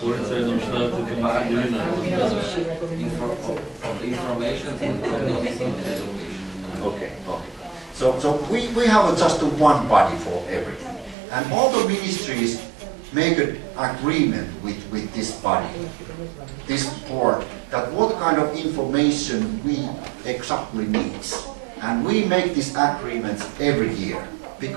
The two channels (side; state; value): left; drops out; at 11.2 s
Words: the information in education. Okay. So we have just one body for everything. And all the ministries make an agreement with this body, this board, that what kind of information we exactly need. And we make these agreements every year,